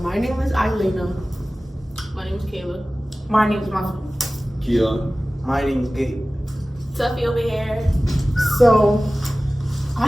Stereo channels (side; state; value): both; normal; correlation 0.97